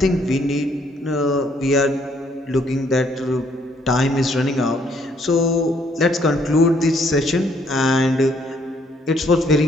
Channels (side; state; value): both; normal; correlation 0.67